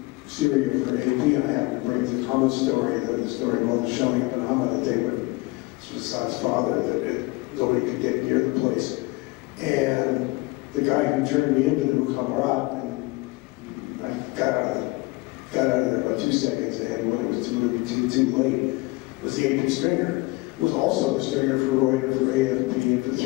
Syria for AP, and I happened to bring the Thomas story, the story called The Showing of an Amma that they would, Assad's father, that nobody could get near the place. And the guy who turned me into the Mukhabarat, and I got out of there about 2 seconds ahead when it was too late, was the agent stringer. Was also the stringer for Roy and for AFP and for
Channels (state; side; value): quieter; right; 23.5 dB